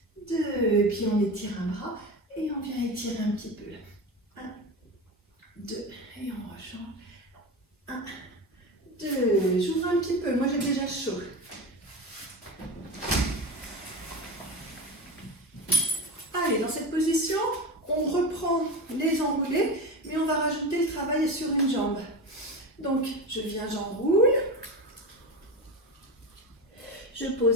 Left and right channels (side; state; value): both; normal; correlation 0.25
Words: 2, et puis on étire un bras et on vient étirer un petit peu là. 1, Allez, j'ouvre un petit peu, moi j'ai déjà chaud. Allez, dans cette position, on reprend les enroulés, mais on va rajouter le travail sur une jambe. Donc, je viens, j'enroule. Je